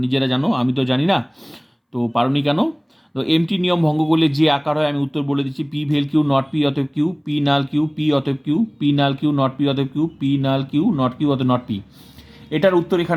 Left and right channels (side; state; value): both; identical; correlation 1.00